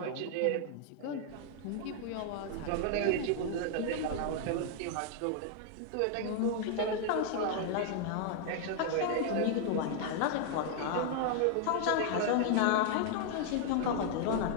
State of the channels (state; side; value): different; both; correlation 0.00